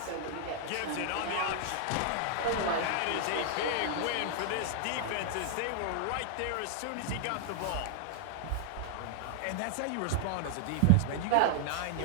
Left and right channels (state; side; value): different; both; correlation -0.01